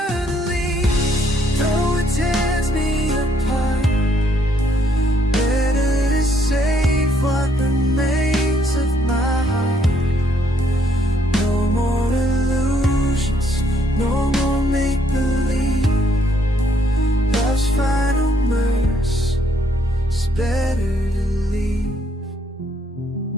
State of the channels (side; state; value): both; normal; correlation 0.69